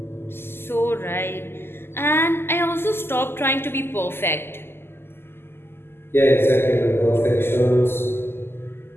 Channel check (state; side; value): late; right; 0.12 ms